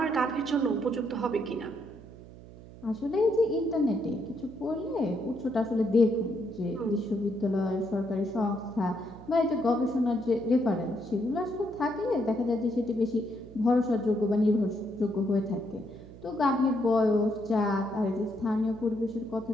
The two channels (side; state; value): right; noise; hum, 18 dB below the sound